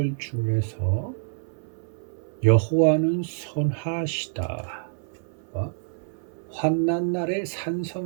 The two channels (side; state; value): left; silent; 60 dB below the other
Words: 중에서 여호와는 선하시다. 환난 날의